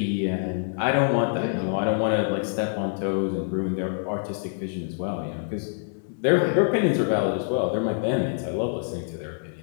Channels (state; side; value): silent; right; 61 dB below the other